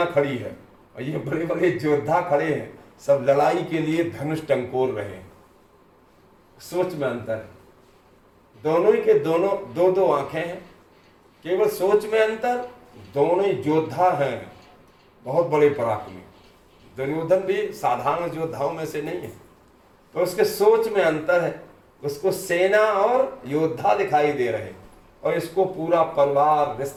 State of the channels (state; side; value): identical; both; correlation 1.00